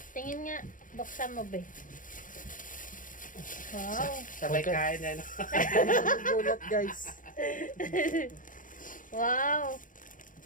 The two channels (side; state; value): right; late; 0.39 ms